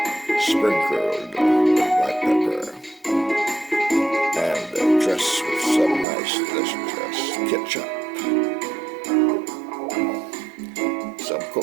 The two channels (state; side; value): drops out; left; at 6.1 s